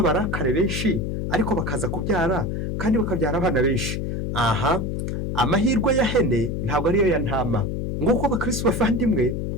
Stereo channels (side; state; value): left; noise; hum, 2 dB below the sound